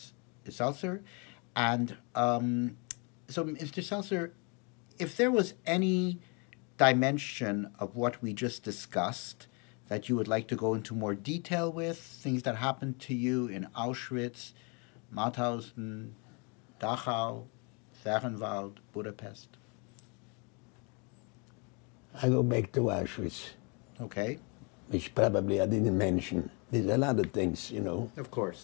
Zelcer. And so, Mr. Seltzer, if there was any dimension of what we just discussed that you would like to go into more detail with, things that happened to you in Auschwitz, Mauthausen, Dachau, Fehrenwald, Budapest. I go back to Auschwitz, Okay. which probably I didn't mention. There's a lot of things, you know. Of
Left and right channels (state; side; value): quieter; right; 32.9 dB